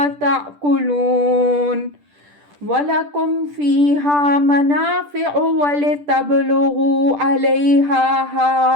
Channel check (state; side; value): late; left; 10 ms